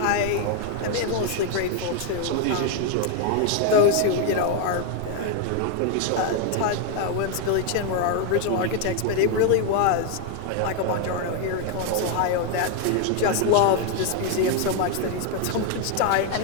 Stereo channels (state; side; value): different; both; correlation 0.01